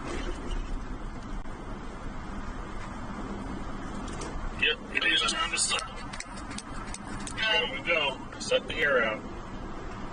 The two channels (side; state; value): both; identical; correlation 1.00